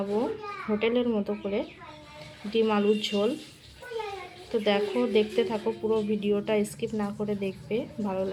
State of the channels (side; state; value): both; identical; correlation 1.00